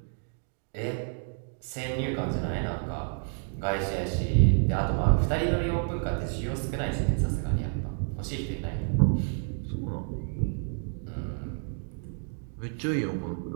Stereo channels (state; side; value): silent; left; 58 dB below the other